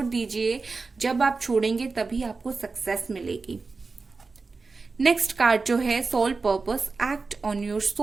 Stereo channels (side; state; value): left; quieter; 4.2 dB